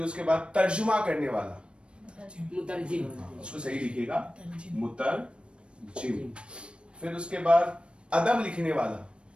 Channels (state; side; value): late; left; 0.057 ms